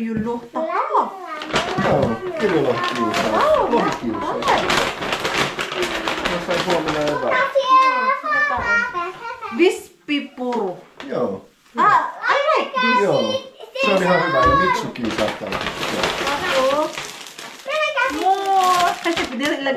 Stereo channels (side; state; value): both; identical; correlation 1.00